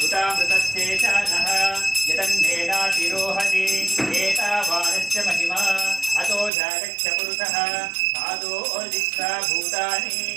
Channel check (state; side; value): drops out; left; at 6.5 s